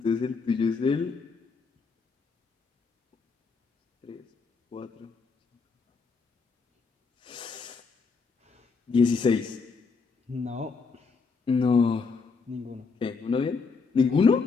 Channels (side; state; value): right; quieter; 4.8 dB